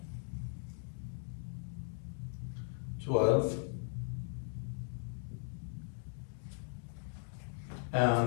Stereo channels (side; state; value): right; silent; digital silence